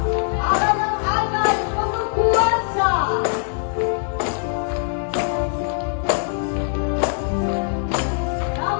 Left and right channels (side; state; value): right; silent; 64 dB below the other